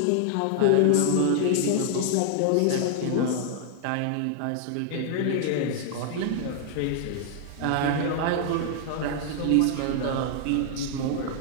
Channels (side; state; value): both; different; correlation -0.01